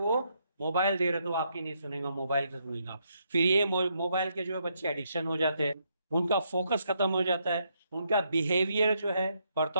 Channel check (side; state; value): both; inverted; correlation -0.76